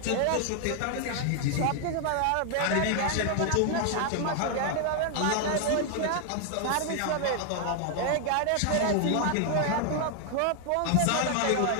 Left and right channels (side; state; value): both; different; correlation 0.00